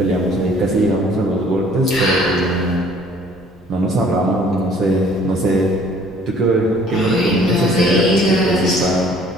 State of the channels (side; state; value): both; normal; correlation 0.56